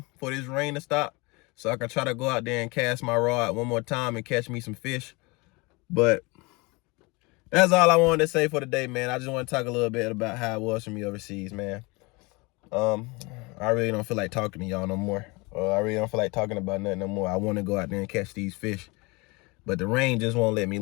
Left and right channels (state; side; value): quieter; right; 26.2 dB